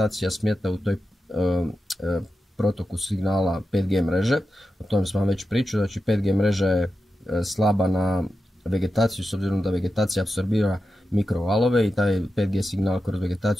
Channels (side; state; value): both; normal; correlation 0.90